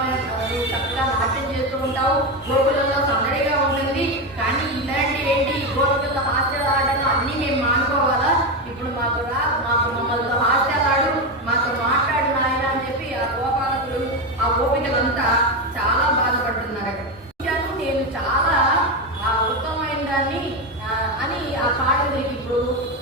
చక్కగా నాట్యం చేస్తూ ఉంటావు. గోకులంలో సందడిగా ఉంటుంది. కానీ ఇలాంటి ఏంటి గోకుల హాస్యాలు అన్నీ మేము మానుకోవాలా? ఇప్పుడు మాకు మమ్మల్ని హాస్యాలాడు, మాతో మాట్లాడు నాయన అని చెప్పి ఆ గోపాలకులు ఆ గోపికలంతా చాలా బాధపడుతున్నారు. నేను చాలా ఉత్తమమైన దాన్ని అని ఆ కాళ్ళకి ఇప్పుడు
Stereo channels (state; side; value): normal; both; correlation 0.13